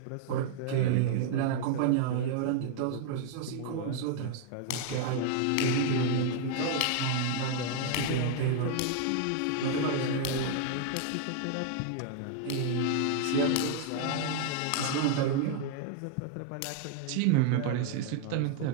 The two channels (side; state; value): both; different; correlation 0.00